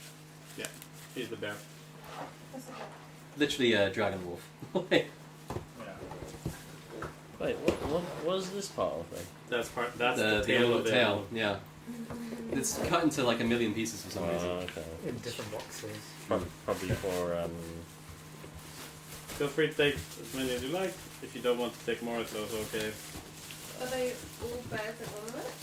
He's the bear. That's okay. Literally a dragon wolf. Yeah. wait, what was this part of it? That's the the tail of the tail. Elmo. Yeah. It's cut into like a million pieces for some reason. Okay. In different boxes. Probably for Feel free to take as many as you like. If you don't want to take more, it's also okay. Are they all bears and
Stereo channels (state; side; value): identical; both; correlation 1.00